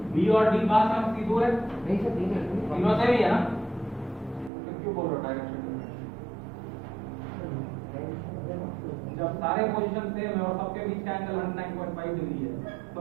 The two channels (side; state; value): left; drops out; at 4.5 s